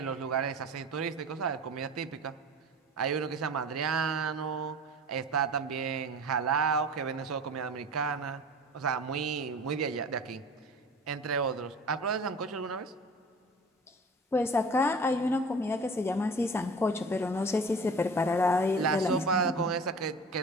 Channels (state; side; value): normal; both; correlation 0.40